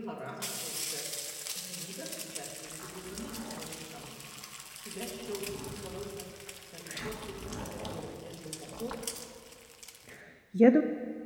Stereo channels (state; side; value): identical; both; correlation 1.00